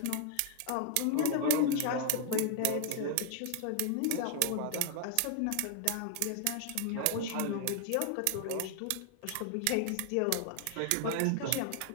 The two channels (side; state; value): both; different; correlation 0.00